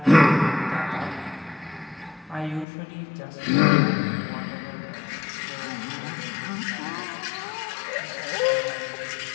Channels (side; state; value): right; drops out; at 2.7 s